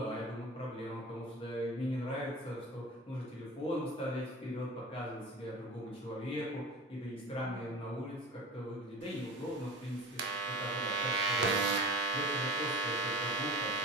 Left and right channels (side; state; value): both; normal; correlation 0.35